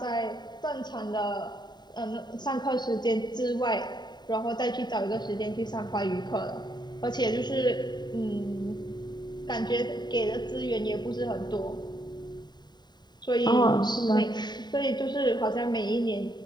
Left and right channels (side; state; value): right; late; 0.21 ms